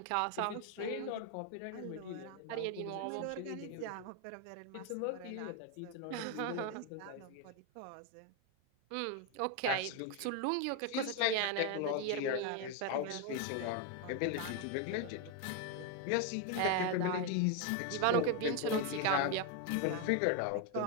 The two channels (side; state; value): both; different; correlation 0.01